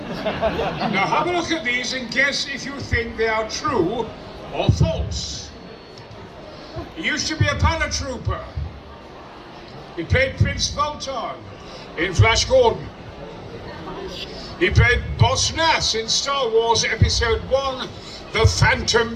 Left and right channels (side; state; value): both; identical; correlation 1.00